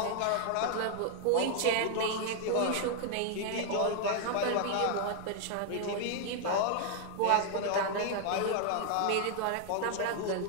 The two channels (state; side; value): different; both; correlation 0.00